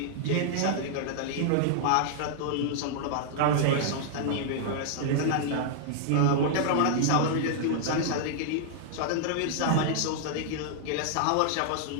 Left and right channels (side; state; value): both; different; correlation -0.01